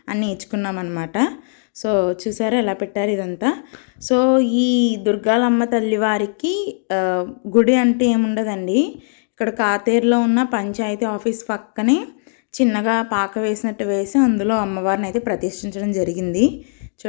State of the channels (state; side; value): silent; right; digital silence